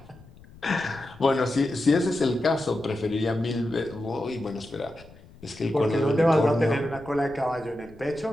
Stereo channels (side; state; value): left; noise; rumble, 22 dB below the sound